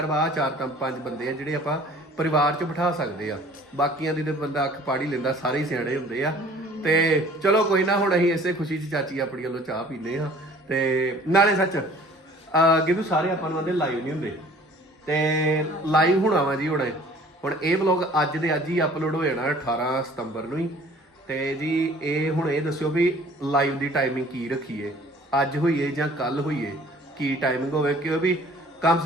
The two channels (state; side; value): normal; both; correlation 0.51